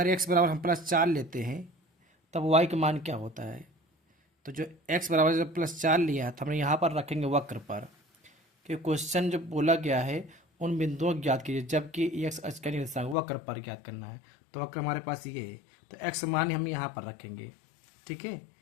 x बराबर हम +4 लेते हैं तब y का मान क्या होता है? तो जो x बराबर जब +4 लिया है तो हमने यहाँ पर रखेंगे वक्र पर, क्योंकि क्वेश्चन जो बोला गया है उन बिंदुओं को ज्ञात कीजिए जबकि x अक्ष का निर्देशांक वक्र पर ज्ञात करना है। तो वक्र हमारे पास ये है, तो x मान हम यहाँ पर रखेंगे। ठीक है,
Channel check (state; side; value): drops out; right; at 13.2 s